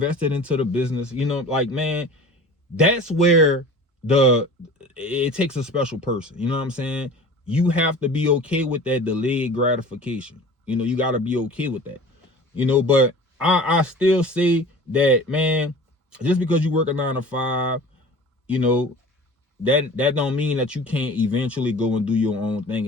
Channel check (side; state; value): both; normal; correlation 0.40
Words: it into the business. Like, man, that's where it takes a special person. You know what I'm saying? You have to be okay with that delayed gratification. You got to be okay with that. you know. But I still say that, man, just because you work a 9 to 5, you know, that don't mean that you can't eventually go and do your own thing